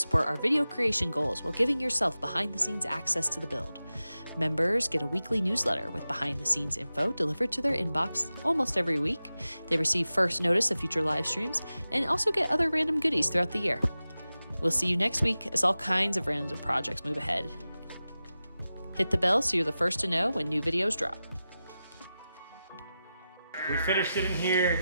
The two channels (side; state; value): both; inverted; correlation -0.94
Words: our video creation goals while giving yourself behind-the-scenes access to the build. Members get a weekly newsletter with behind-the-scenes info delivered to their inbox almost every week. They receive first notice of future live streams and also get other random goodies throughout the year. We'll see you next week as all kinds of random projects move ahead. Hit the bell so you're the first to know when new videos drop. We finished it in